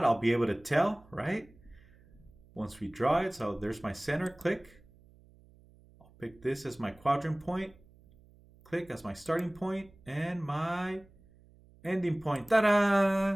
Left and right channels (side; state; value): right; noise; hum, 26 dB below the sound